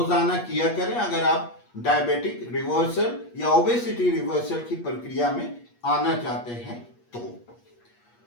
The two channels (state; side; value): late; right; 8.4 ms